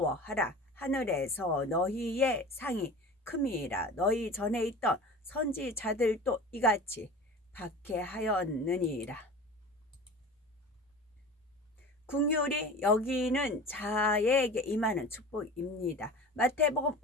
하늘에서 너희의 상이 큼이라. 너희 전에 있던 선지자들도 이같이 박해하였느니라. 긍휼히 여기는 자에게 임하는 축복입니다. 마태복음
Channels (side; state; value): both; normal; correlation 0.36